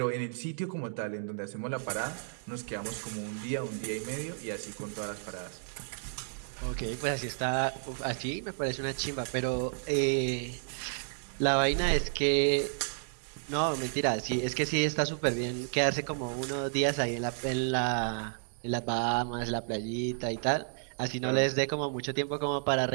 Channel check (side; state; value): left; silent; digital silence